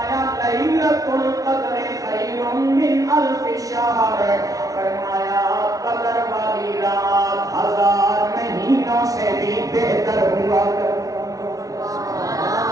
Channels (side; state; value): left; late; 0.17 ms